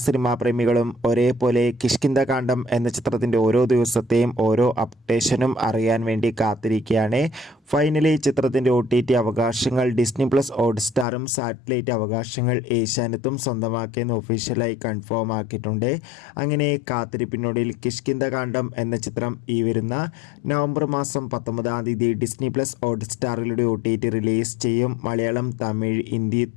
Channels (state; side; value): drops out; right; at 11.1 s